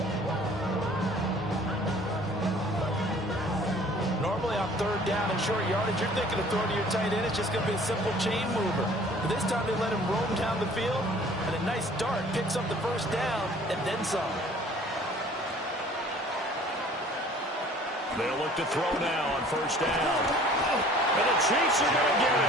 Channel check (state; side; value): normal; both; correlation 0.52